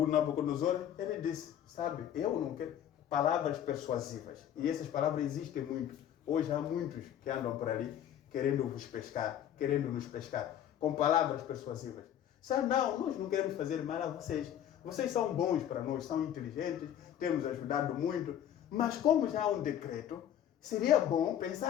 Nabucodonosor, ele disse, sabe, eu não quero palavras persuasivas. E essas palavras existem muito. Hoje há muitos que andam por ali querendo nos pescar, com palavras persuasivas. Sabe, não, nós não queremos fazer mal a vocês. Vocês são bons para nós, são inteligentes, temos ajudado muito. Mas como já há um decreto, seria bom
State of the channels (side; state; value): right; quieter; 10.4 dB